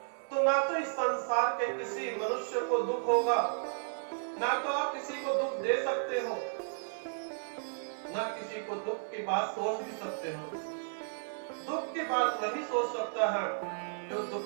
तो ना तो इस संसार के किसी मनुष्य को दुख होगा, ना तो आप किसी को दुख दे सकते हो, ना किसी को दुख की बात सोच भी सकते हो। दुख की बात वही सोच सकता है जो दुख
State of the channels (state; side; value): silent; left; 55 dB below the other